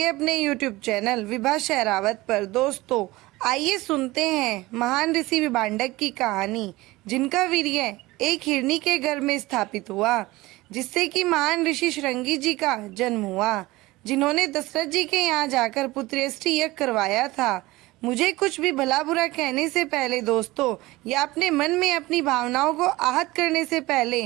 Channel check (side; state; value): left; quieter; 19.8 dB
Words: अपने YouTube चैनल विभा शहरावत पर। दोस्तों, आइए सुनते हैं महान ऋषि विभांडक की कहानी, जिनका वीर्य एक हिरनी के गर्भ में स्थापित हुआ, जिससे कि महान ऋषि श्रृंगी जी का जन्म हुआ, जिन्होंने दशरथ जी के यहाँ जाकर पुत्रेष्टि यज्ञ करवाया था। मुझे कुछ भी भला बुरा कहने से पहले दोस्तों, या अपने मन में अपनी भावनाओं को आहत करने से पहले